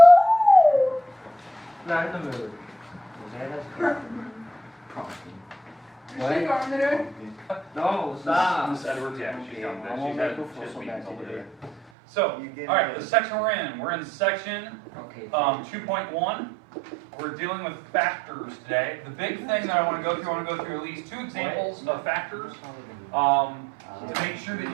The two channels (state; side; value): drops out; left; at 11.8 s